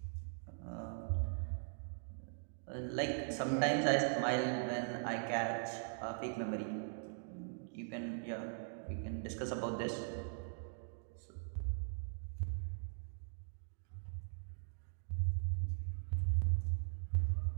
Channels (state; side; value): silent; left; digital silence